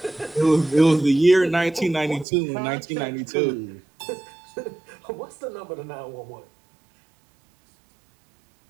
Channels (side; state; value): left; drops out; at 2.2 s